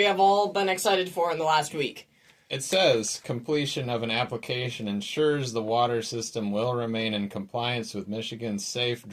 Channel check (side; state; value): both; identical; correlation 1.00